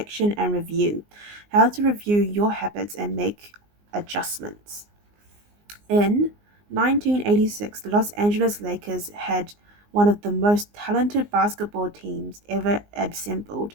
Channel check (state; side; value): late; left; 19 ms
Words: and review. How to review your habits and make adjustments. In 1986, the Los Angeles Lakers had one of the most talented basketball teams ever assembled,